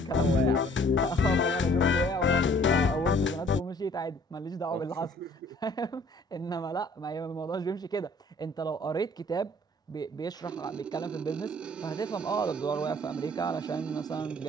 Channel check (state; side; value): normal; both; correlation 0.57